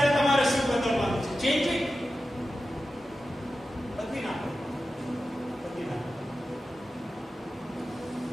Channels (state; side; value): normal; both; correlation 0.93